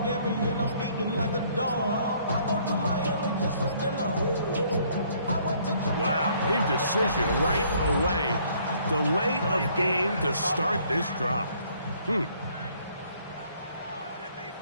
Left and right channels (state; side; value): inverted; both; correlation -0.63